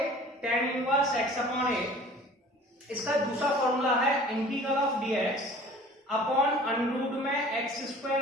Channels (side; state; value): both; normal; correlation 0.46